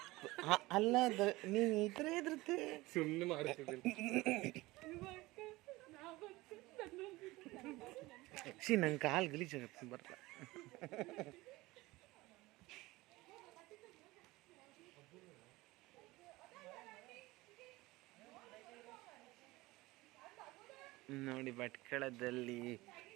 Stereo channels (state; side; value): quieter; left; 20.2 dB